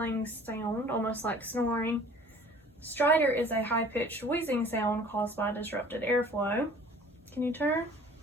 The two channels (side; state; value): both; normal; correlation 0.49